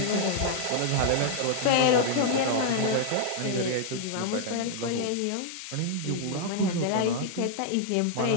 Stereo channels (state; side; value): different; both; correlation -0.01